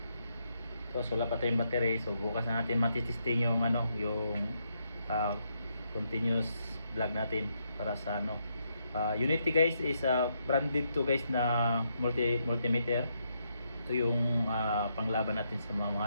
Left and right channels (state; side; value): inverted; both; correlation -0.78